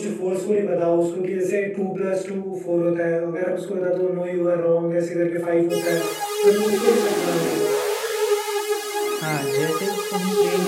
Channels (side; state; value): both; identical; correlation 1.00